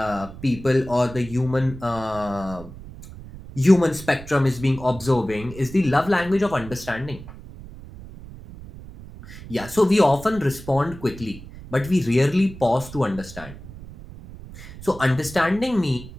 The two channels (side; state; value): right; noise; rumble, 15 dB below the sound